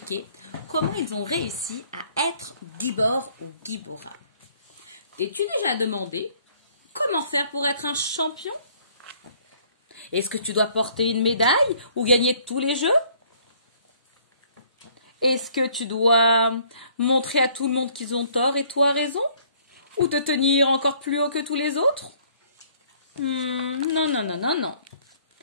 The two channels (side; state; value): both; inverted; correlation -0.60